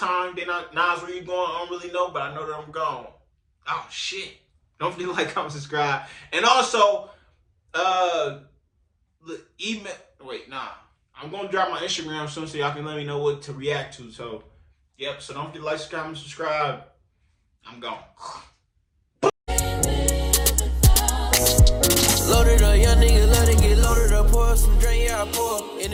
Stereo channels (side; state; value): both; identical; correlation 1.00